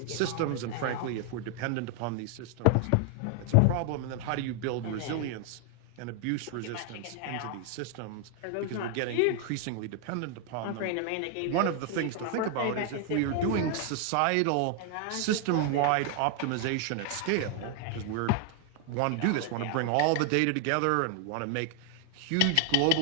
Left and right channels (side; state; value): both; different; correlation 0.00